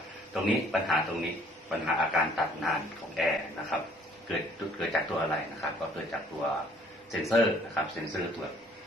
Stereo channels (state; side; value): normal; both; correlation 0.59